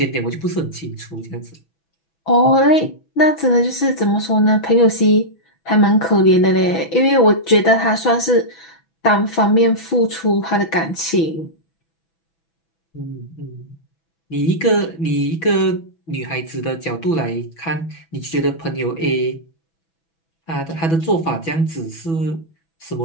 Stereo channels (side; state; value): right; late; 6.1 ms